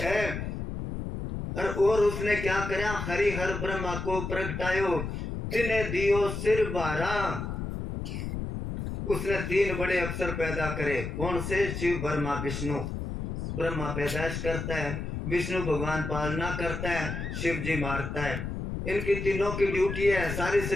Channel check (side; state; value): left; noise; rumble, 5 dB below the sound